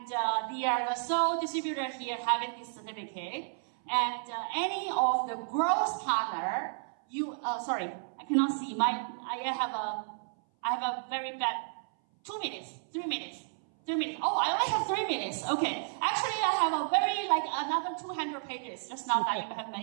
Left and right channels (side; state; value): left; silent; 57 dB below the other